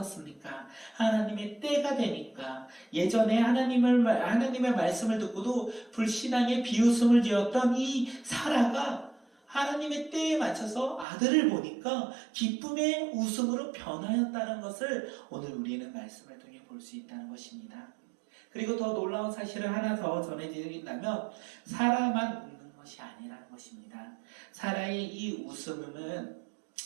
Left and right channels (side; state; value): left; drops out; at 11.1 s